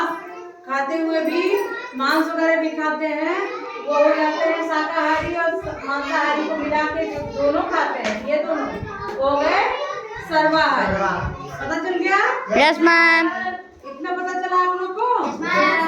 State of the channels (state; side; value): identical; both; correlation 1.00